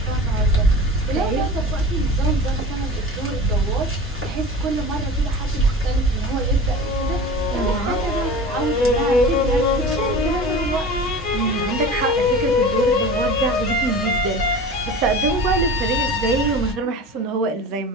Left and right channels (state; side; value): normal; both; correlation 0.35